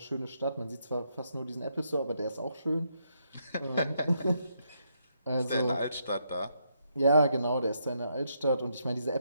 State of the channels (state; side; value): inverted; both; correlation -0.78